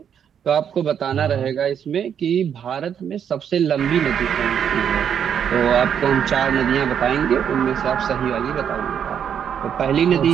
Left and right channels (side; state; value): left; quieter; 8.4 dB